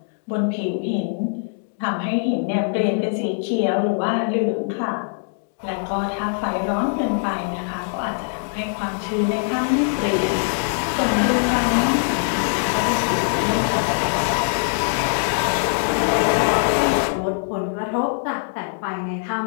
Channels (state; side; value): silent; right; digital silence